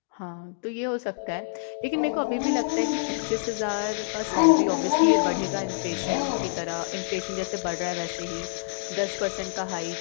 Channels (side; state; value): right; silent; digital silence